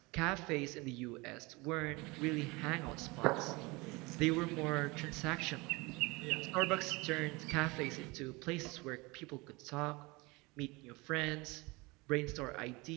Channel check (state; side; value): quieter; left; 24.7 dB